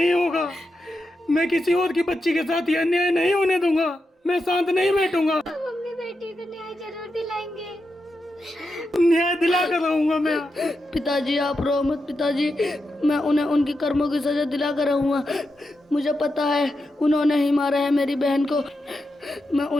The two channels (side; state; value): both; normal; correlation 0.87